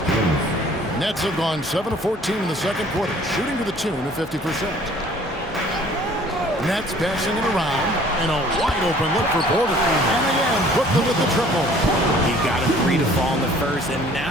Jones. Nets have gone 7 of 14 in the second quarter, shooting to the tune of 50%. Nets passing it around, and a wide-open look for Porter. And again, Brooklyn with the triple. He got a 3 to fall in the first, and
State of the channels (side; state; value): both; normal; correlation 0.54